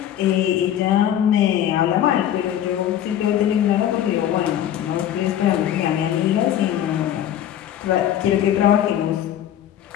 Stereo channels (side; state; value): right; quieter; 10.9 dB